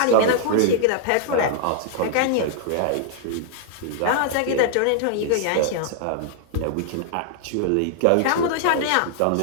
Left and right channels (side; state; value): both; different; correlation -0.01